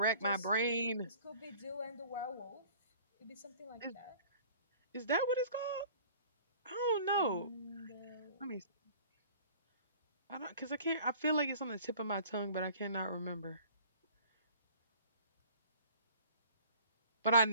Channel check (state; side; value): inverted; both; correlation -0.49